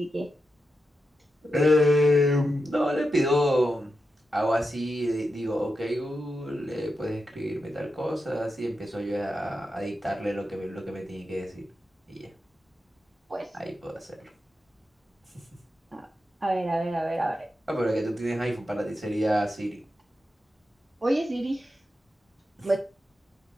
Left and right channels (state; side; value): normal; both; correlation 0.88